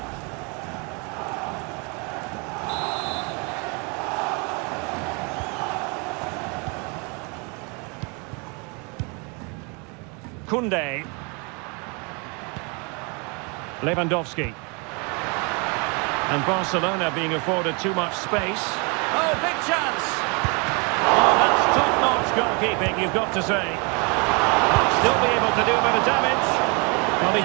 Koundé. Lewandowski. And Barcelona being afforded too much space. Oh, big chance! Oh, that's top-notch goalkeeping, you've got to say. Still be able to do a bit of damage. Well, he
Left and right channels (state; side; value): quieter; left; 31.9 dB